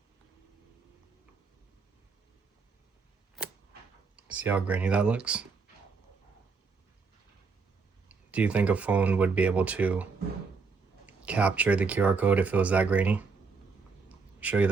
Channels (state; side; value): quieter; left; 4.7 dB